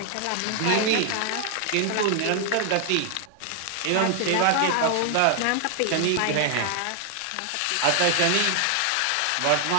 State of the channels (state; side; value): different; both; correlation 0.00